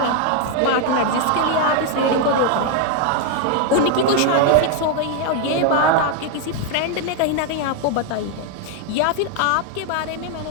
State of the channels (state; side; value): different; both; correlation 0.01